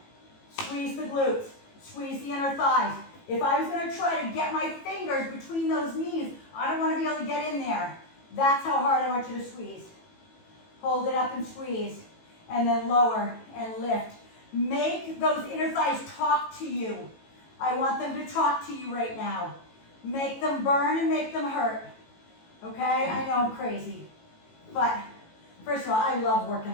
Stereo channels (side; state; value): right; late; 18 ms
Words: squeeze the glutes, squeeze the inner thighs. If I was going to try to get my fingers between those knees, I don't want to be able to get in there. That's how hard I want you to squeeze. Hold it up and squeeze, and then lower and lift. Make those inner thighs talk to you. I want them to talk to you right now. Make them burn and make them hurt. Okay? I know I'm crazy. But first of all, I love